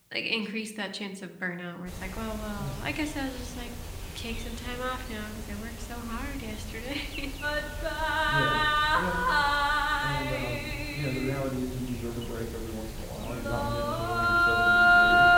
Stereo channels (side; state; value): both; identical; correlation 1.00